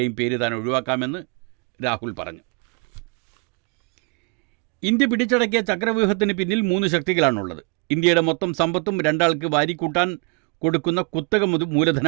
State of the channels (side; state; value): left; quieter; 33.3 dB